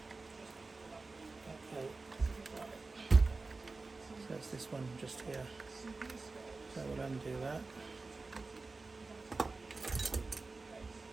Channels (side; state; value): left; quieter; 3.7 dB